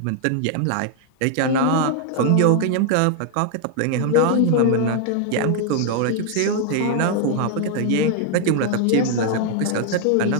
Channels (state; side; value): different; both; correlation 0.00